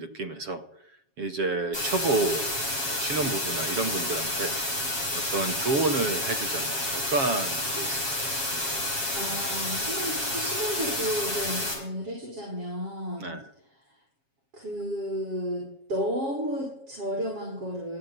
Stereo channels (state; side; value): late; left; 7.3 ms